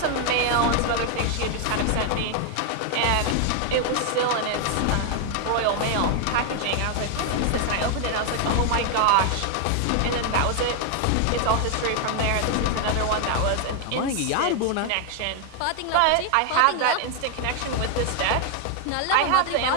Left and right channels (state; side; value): different; both; correlation 0.00